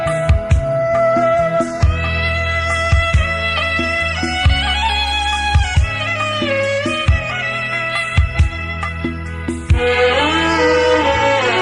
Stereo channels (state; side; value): identical; both; correlation 1.00